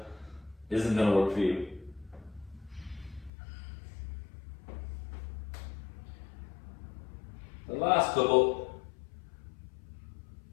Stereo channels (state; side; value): drops out; right; at 3.3 s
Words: isn't going to work for you. The last couple,